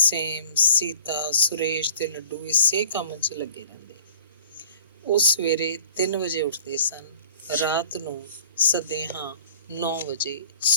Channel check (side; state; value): both; inverted; correlation -0.47